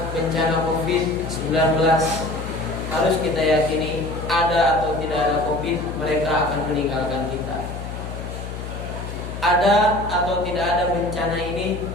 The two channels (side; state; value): left; noise; hum, 8 dB below the sound